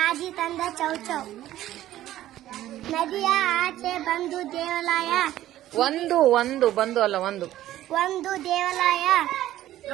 ತಂದ ಚೌಚೌ ನದಿಯ ಆಚೆ ಬಂದು ದೇವಾಲಯ ಒಂದು ಬಂದು ಅಲ್ಲ ಒಂದು ದೇವಾಲಯ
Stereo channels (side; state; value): left; quieter; 13.8 dB